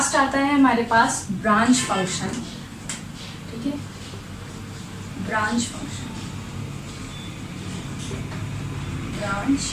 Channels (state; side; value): identical; both; correlation 1.00